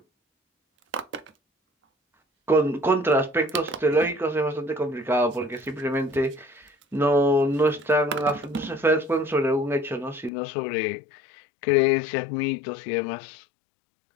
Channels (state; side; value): drops out; right; at 10.3 s